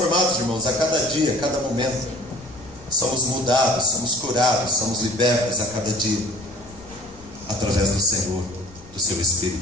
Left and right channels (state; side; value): noise; left; rumble, 22 dB below the sound